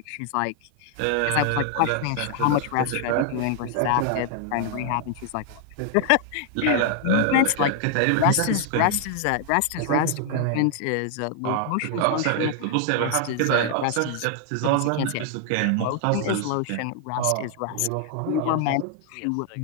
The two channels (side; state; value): both; different; correlation 0.00